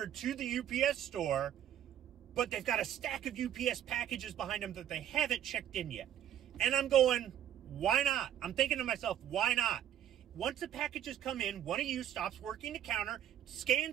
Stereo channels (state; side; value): quieter; left; 10.7 dB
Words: to the UPS store, but they've got a stack of UPS packages behind them that they haven't checked in yet. And I'm going, why not? I'm thinking to myself, why not? Once the packages come in, one of you stops working the counter,